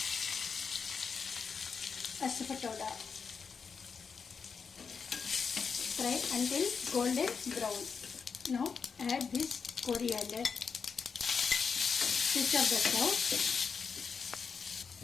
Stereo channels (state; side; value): quieter; right; 5.7 dB